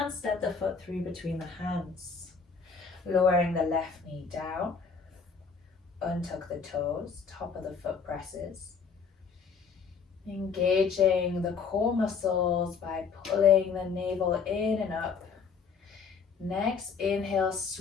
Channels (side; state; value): right; quieter; 5.7 dB